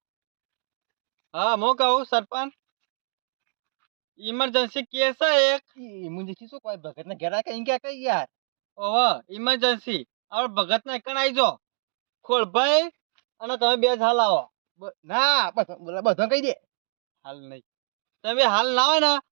હા હું કહું સરપંચ ઇમરજન્સી કેસ છે એક મુંજે શું કોઈ ભગત ના ઘેરા કઈ કે કઈ યાર ઓહો ઇમરજન્સી હવે ભગત ના એકણ આવી જો ખોળભાઈ અને તમે બે જ હાલ આવો ના બસ બધો કહી દે હાલ નહીં તમે હાલ ના હોય ને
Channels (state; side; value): silent; left; digital silence